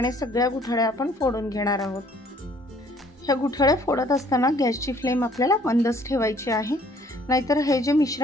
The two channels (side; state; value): both; normal; correlation 0.59